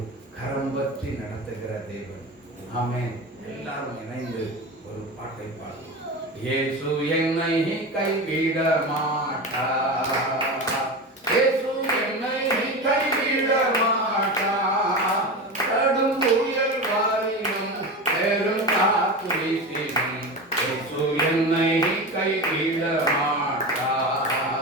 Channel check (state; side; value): normal; both; correlation 0.25